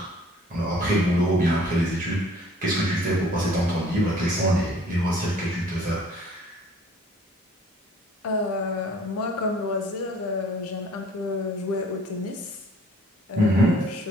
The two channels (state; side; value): normal; both; correlation 0.55